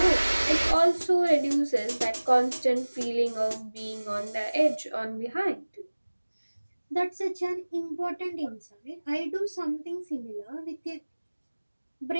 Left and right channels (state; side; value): inverted; both; correlation -1.00